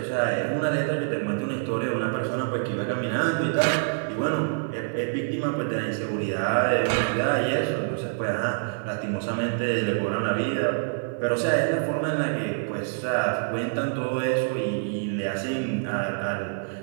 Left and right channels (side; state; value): left; silent; 61 dB below the other